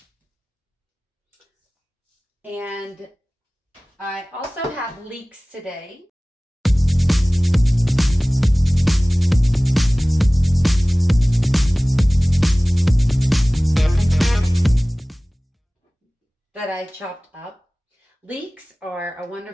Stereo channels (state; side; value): normal; both; correlation 0.98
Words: And I also have leeks today. That I chopped up. Leeks are a